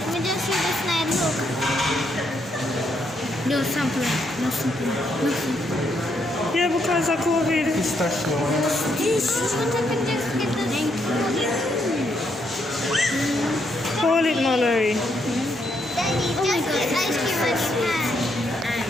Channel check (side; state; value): both; normal; correlation 0.76